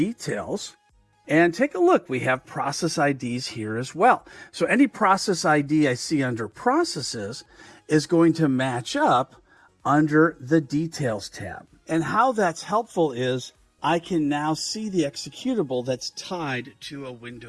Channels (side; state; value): both; identical; correlation 1.00